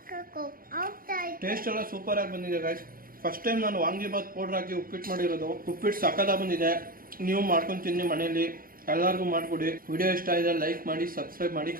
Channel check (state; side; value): late; left; 0.42 ms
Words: ಟೇಸ್ಟ್ ಎಲ್ಲ ಸೂಪರ್ ಆಗಿ ಬಂದಿದೆ ಗೈಸ್. ಫಸ್ಟ್ ಟೈಮ್ ನಾನು ವಾಂಗಿಬಾತ್ ಪೌಡರ್ ಹಾಕಿ ಉಪ್ಪಿಟ್ಟು ಮಾಡಿರೋದು. ಉಪ್ಪಿಟ್ಟು ಸಕ್ಕತ್ತಾಗಿ ಬಂದಿದೆ. ನೀವು ಮಾಡ್ಕೊಂಡು ತಿನ್ನಿ ಮನೆಯಲ್ಲಿ, ಎಲ್ಲರಿಗೂ ಮಾಡಿಕೊಡಿ. ವಿಡಿಯೋ ಇಷ್ಟ ಇದೆ ಲೈಕ್ ಮಾಡಿ, ಸಬ್ಸ್ಕ್ರೈಬ್ ಮಾಡಿ,